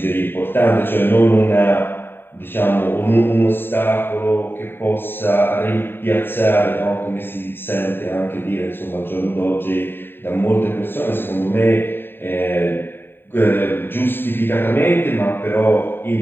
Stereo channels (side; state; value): right; late; 0.10 ms